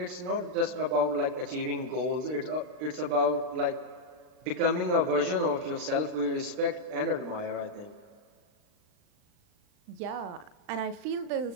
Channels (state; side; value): late; left; 39 ms